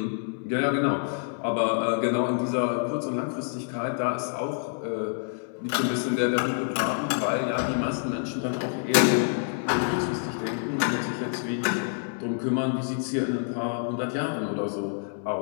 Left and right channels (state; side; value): silent; right; 60 dB below the other